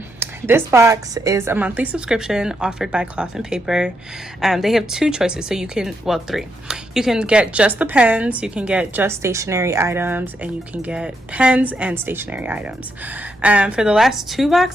this box is a monthly subscription offered by Cloth and Paper. They have two choices, so you can, well, three. You can get just the pens, you can get just stationery items, and you can get pens and stationery items. For the last two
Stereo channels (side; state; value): both; normal; correlation 0.80